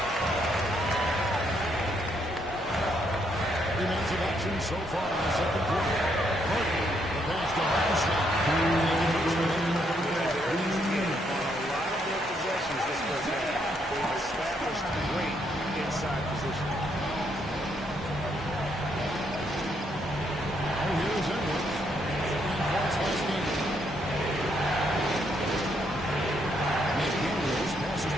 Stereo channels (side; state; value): both; normal; correlation 0.74